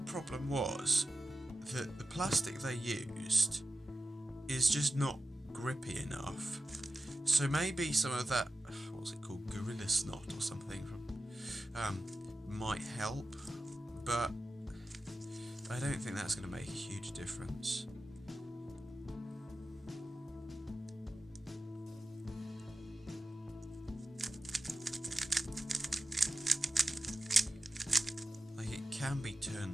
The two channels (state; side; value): normal; both; correlation 0.93